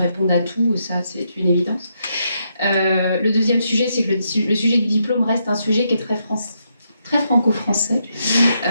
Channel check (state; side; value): inverted; both; correlation -0.79